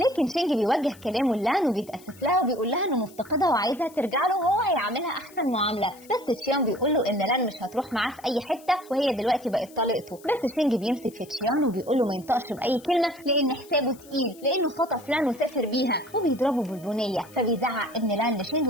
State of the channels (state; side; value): noise; left; hiss, 23 dB below the sound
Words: لكن شينج بيوجه كلامه لان وبيتأسف لها وبيقول لها انه مفتقدها وعايزها ترجع له وهو هيعملها احسن معامله، بس تشيان بيقول له ان لان مش هتروح معاه في اي حته وهي دلوقتي بقت طليقته، بس شينج بيمسك في تشيان وبيقول له ما ينطقش باي كلمه لان حسابه تقيل، لانه خطف لان وسافر بيها، وبيضربه بالبنيه، فبيزعق ابن لان لشينج